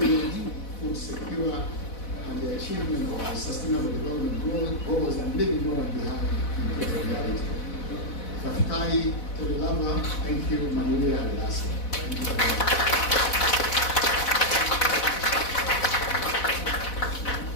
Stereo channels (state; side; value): late; right; 4.1 ms